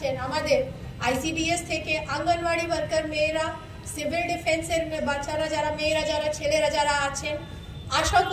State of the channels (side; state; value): both; identical; correlation 1.00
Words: আমাদের আইসিডিএস থেকে আঙ্গনওয়াড়ি ওয়ার্কার মেয়েরা, সিভিল ডিফেন্সের বাচ্চারা যারা, মেয়েরা যারা, ছেলেরা যারা আছেন, আশা